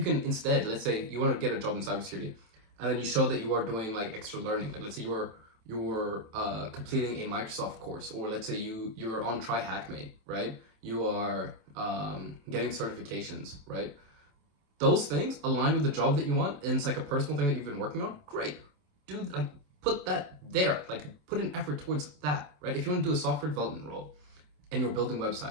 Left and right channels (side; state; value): left; late; 27 ms